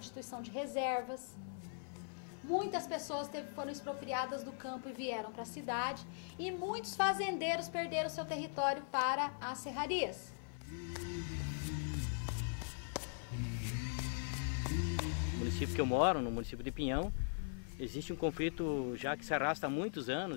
de reservas. Muitas pessoas foram expropriadas do campo e vieram para a cidade, e muitos fazendeiros perderam seu território para as serrarias. No município que eu moro, no município de Pinhão, existe um conflito já que se arrasta há muitos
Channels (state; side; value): silent; right; 51 dB below the other